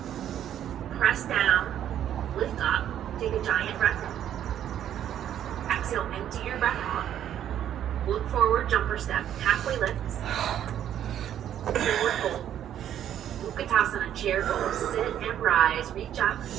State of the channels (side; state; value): left; quieter; 10.6 dB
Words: Press down, lift up, take a giant breath in. Exhale, empty your breath out. Look forward, jump or step. Halfway lift. Forward fold. Utkatasana, chair pose. Sit and rise. Reach up.